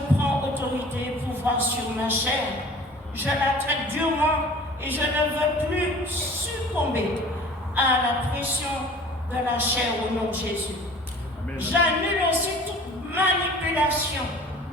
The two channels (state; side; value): normal; both; correlation 0.45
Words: prends autorité et pouvoir sur ma chair. Je la traite durement et je ne veux plus succomber à la pression de la chair au nom de Jésus. J'annule aussi toute manipulation